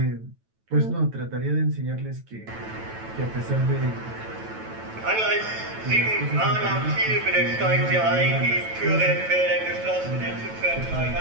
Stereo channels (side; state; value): left; late; 9.1 ms